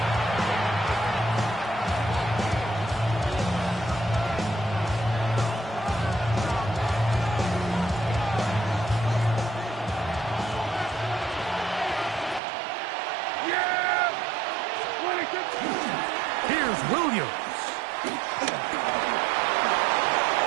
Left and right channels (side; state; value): left; drops out; at 12.4 s